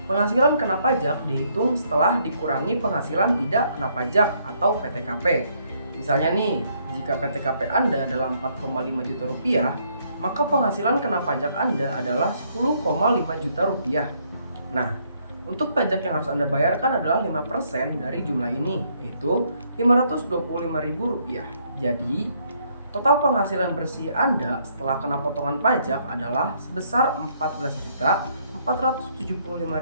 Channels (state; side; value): inverted; both; correlation -0.70